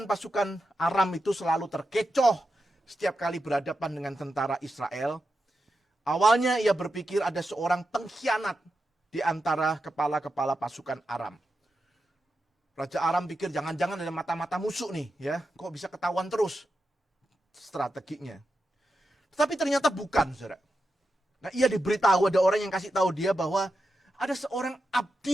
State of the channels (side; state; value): both; normal; correlation 0.89